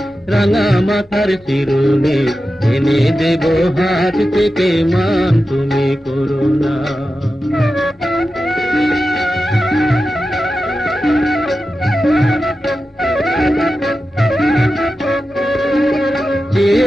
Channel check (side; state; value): both; normal; correlation 0.92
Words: রাঙা মাথার চিরুনি এনে দেব হাত থেকে মান তুমি করো না যে